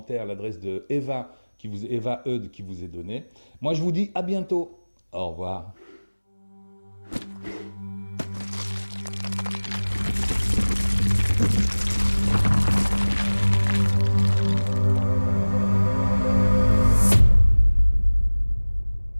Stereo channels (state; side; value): inverted; both; correlation -1.00